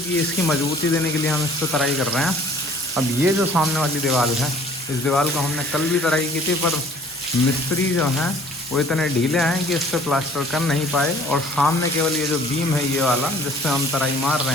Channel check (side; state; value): both; normal; correlation 0.54